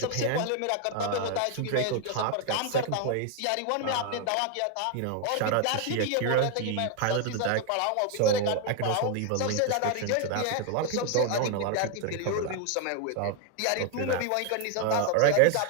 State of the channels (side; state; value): both; different; correlation 0.00